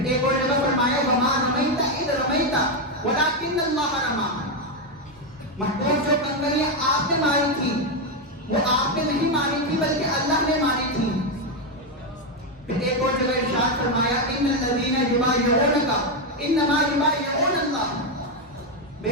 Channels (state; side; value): normal; both; correlation 0.06